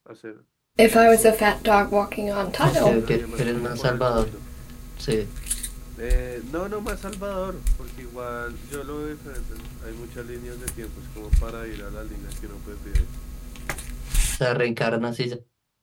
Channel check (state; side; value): identical; both; correlation 1.00